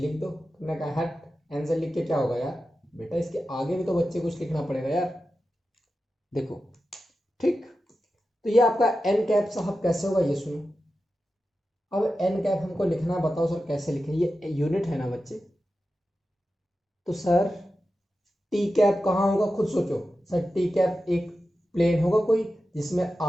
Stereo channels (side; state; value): both; normal; correlation 0.92